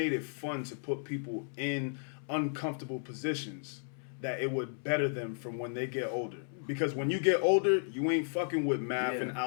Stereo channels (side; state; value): right; silent; 55 dB below the other